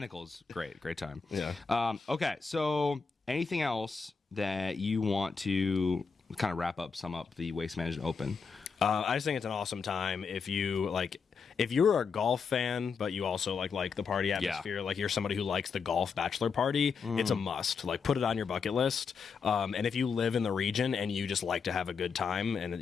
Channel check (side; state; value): right; quieter; 5.5 dB